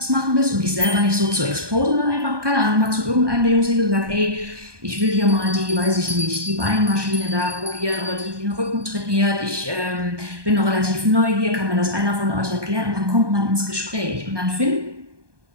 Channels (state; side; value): late; left; 1.2 ms